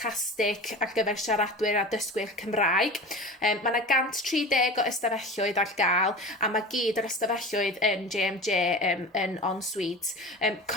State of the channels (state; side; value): normal; both; correlation 0.32